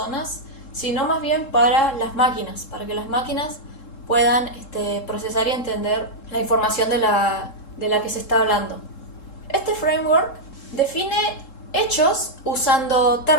sino más bien para las máquinas, para que las máquinas puedan procesar y entender la información de la que se está hablando. Este framework define hechos usando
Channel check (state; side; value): late; right; 3.7 ms